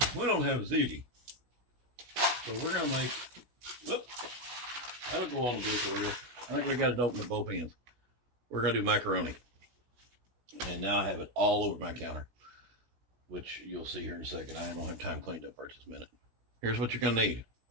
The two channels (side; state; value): left; late; 16 ms